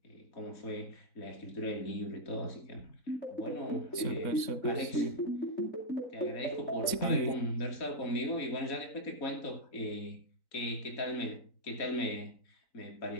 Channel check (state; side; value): late; right; 3.6 ms